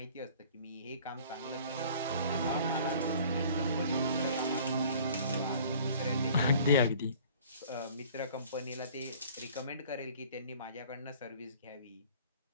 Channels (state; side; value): inverted; both; correlation -0.50